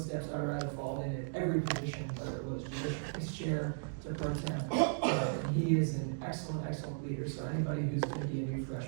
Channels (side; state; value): left; silent; digital silence